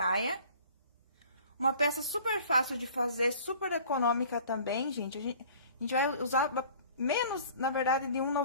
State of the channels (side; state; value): both; inverted; correlation -0.49